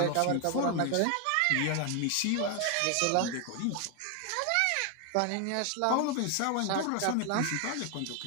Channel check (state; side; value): different; both; correlation 0.01